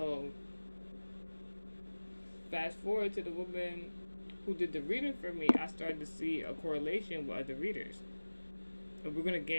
fast forward to the woman who did the reading for me, I started to see a correlation with other readers. But we're gonna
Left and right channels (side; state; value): both; inverted; correlation -1.00